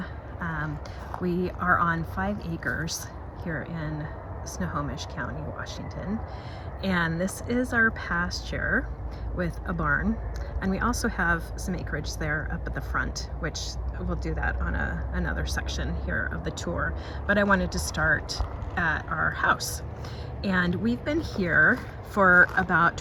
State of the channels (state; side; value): identical; both; correlation 1.00